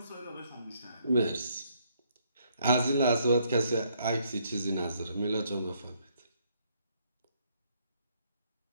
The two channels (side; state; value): both; inverted; correlation -0.70